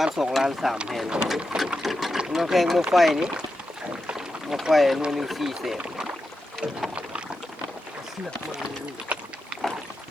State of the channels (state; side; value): normal; both; correlation 0.89